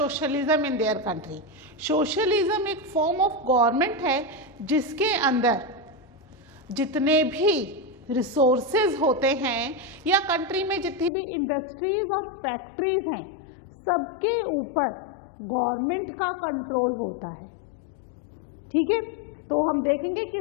in their country. Socialism एक फॉर्म ऑफ गवर्नमेंट है जिसके अंदर जितने भी रिसोर्सेज होते हैं या कंट्री में जितनी भी इंडस्ट्रीज और फैक्ट्रीज हैं सबके ऊपर गवर्नमेंट का कंट्रोल होता है. ठीक है, तो हम देखेंगे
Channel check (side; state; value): right; drops out; at 11.1 s